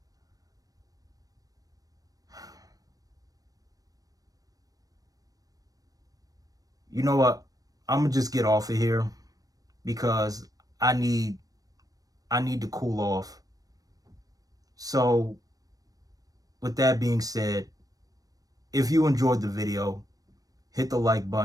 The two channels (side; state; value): left; late; 0.18 ms